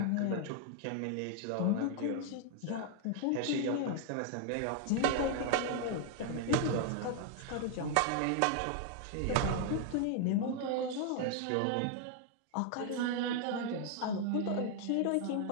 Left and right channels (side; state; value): both; different; correlation 0.00